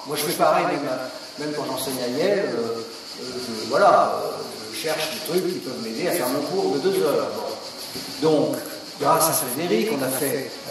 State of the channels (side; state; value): both; identical; correlation 1.00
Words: Moi je fais pareil, même quand j'enseigne à Yale, je cherche des trucs qui peuvent m'aider à faire mon cours de 2 heures. Donc, grâce à Frédéric, il a